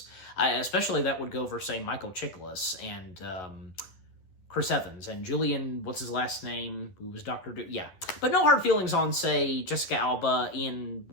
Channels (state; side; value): late; right; 11 ms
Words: Especially that would go for, say, Michael Chiklis and Chris Evans, and Julian, what's his last name, who was Dr. Doom, yeah. But no hard feelings on, say, Jessica Alba, Ian,